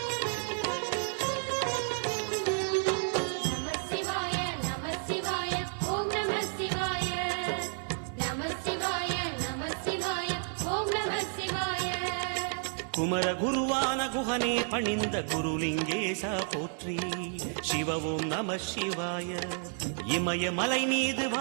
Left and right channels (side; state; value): left; silent; 57 dB below the other